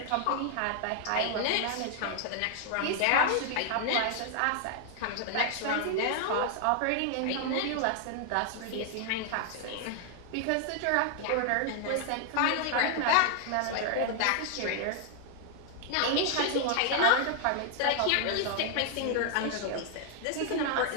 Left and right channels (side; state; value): both; different; correlation 0.00